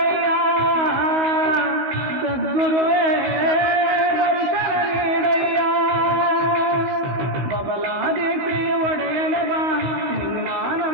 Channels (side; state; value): left; late; 16 ms